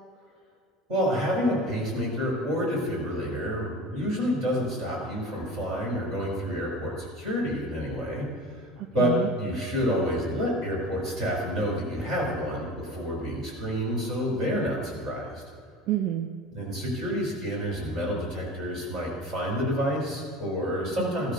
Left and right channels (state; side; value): normal; both; correlation 0.36